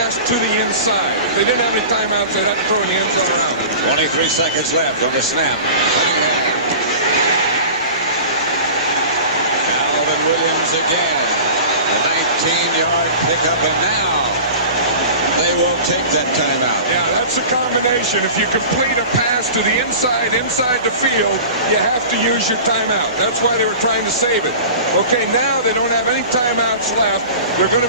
to the inside. If they didn't have any timeouts, they'd have to throw in the end zone around. 23 seconds left on the snap. Calvin Williams again. A 19-yard pickup, and now they will take that timeout. Yeah, that's a combination. If you complete a pass to the inside the field, you have to use your timeout. That's why they were trying to save it. Okay, now they don't have any timeouts left. They're going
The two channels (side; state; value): both; inverted; correlation -0.37